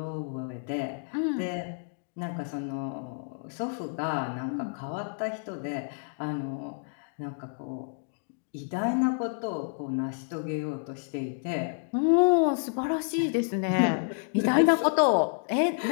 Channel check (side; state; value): right; silent; digital silence